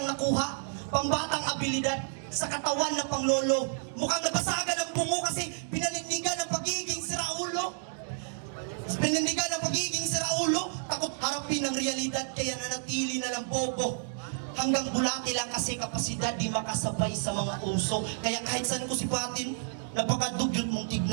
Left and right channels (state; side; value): silent; left; digital silence